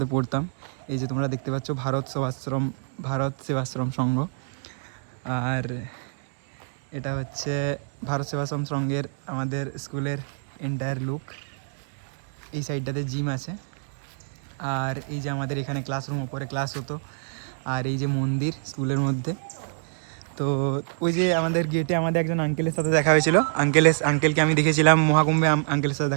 পড়তাম। এই যে তোমরা দেখতে পাচ্ছ ভারত সেবাশ্রম সংঘ। আর এটা হচ্ছে ভারত সেবাশ্রম সংঘের আমাদের স্কুলের এন্টায়ার লুক। এই সাইডটাতে জিম আছে, আর এই যে আমাদের এখানে ক্লাসরুম, ওপরে ক্লাস হতো। আর এই যে মন্দির স্কুলের মধ্যে। তো ওই যে আমাদের গেটে আমাদের একজন আঙ্কেলের সাথে দেখা হয়েছিল। আঙ্কেলকে আমি দেখেছিলাম মহাকুম্ভে, আঙ্কেলের সাথে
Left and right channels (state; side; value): silent; left; 61 dB below the other